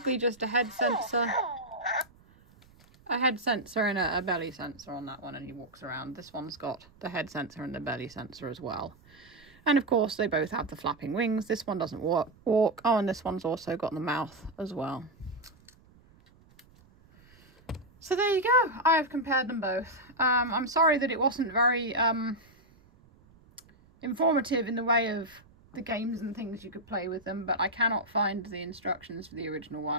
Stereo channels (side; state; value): right; noise; rumble, 27 dB below the sound